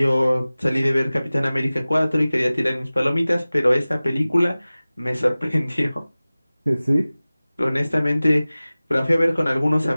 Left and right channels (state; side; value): inverted; both; correlation -0.98